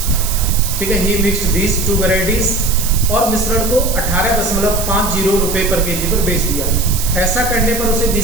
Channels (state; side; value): noise; right; hiss, 5 dB below the sound